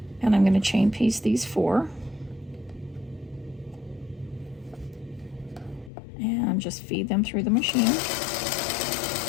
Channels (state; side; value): drops out; right; at 5.9 s